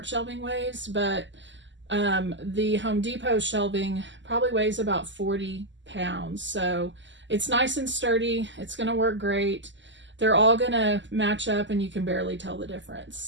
shelving weighs, but the Home Depot shelving probably weighs about 40 pounds. So it's nice and sturdy. It's going to work great. They're all going to match up and you can barely tell the difference.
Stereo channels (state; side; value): late; left; 0.54 ms